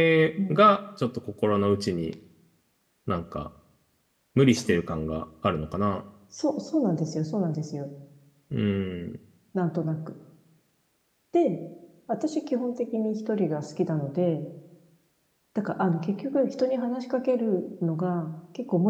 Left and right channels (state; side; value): identical; both; correlation 1.00